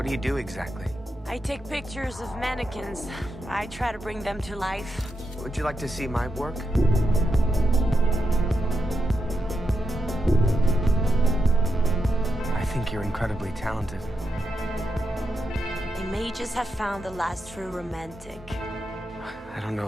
do you do exactly? I take pictures of mannequins. I try to bring them to life. Would you like to see my work? I think you're incredibly talented. They may just have found the last true romantic. I don't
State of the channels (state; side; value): normal; both; correlation 0.86